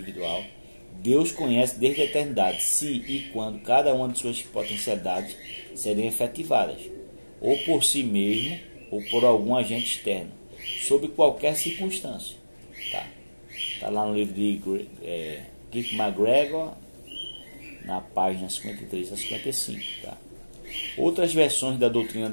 Deus conhece desde a eternidade se e quando cada uma de suas potencialidades serem efetivadas, ou por si mesmo, ou por algum agente externo, sob qualquer circunstância. Tá lá no livro de Keith McGregor, na página 53 a 55. Tá? Outras versões da doutrina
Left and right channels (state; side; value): inverted; both; correlation -1.00